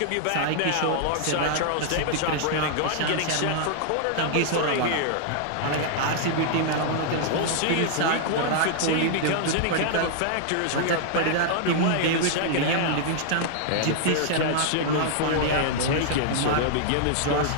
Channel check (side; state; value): both; different; correlation -0.01